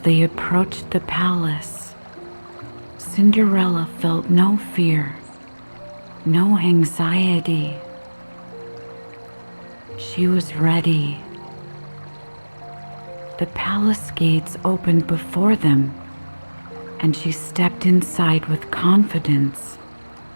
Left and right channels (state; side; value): inverted; both; correlation -1.00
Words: approached the palace, Cinderella felt no fear, no anxiety. She was ready. The palace gates opened before them, and she stepped inside with confidence.